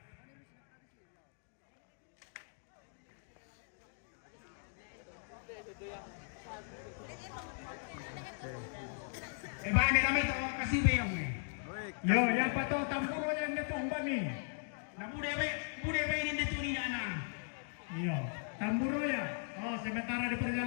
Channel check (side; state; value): right; silent; digital silence